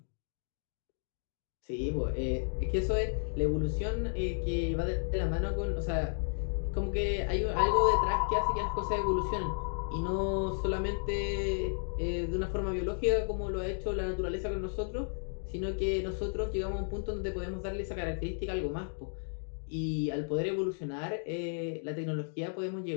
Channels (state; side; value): silent; right; digital silence